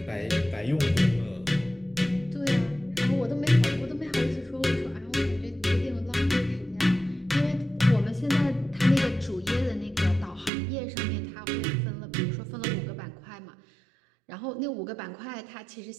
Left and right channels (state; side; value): drops out; left; at 10.5 s